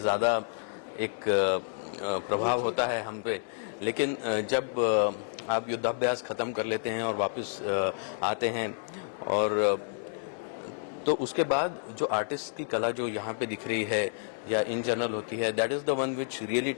एक प्रभाव होता है हम पे। लेकिन जब आप युद्धाभ्यास ख़त्म कर लेते हैं और वापस आते हैं, और तो उसके बाद जो आर्टिस्ट की कला जो यहाँ पे दिख रही है या इन जनरल होती है, that is the one which really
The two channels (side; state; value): right; silent; digital silence